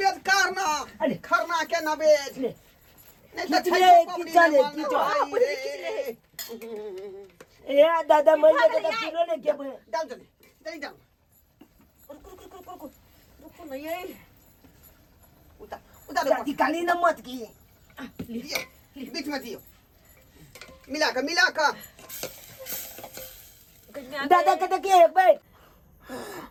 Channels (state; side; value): identical; both; correlation 1.00